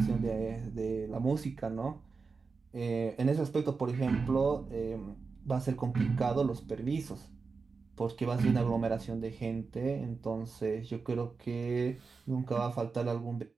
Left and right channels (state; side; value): quieter; left; 4.7 dB